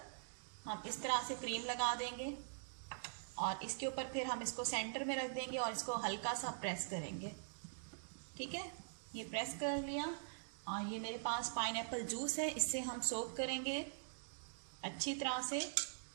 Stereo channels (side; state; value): left; silent; digital silence